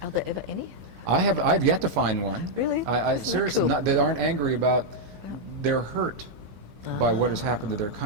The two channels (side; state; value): left; late; 17 ms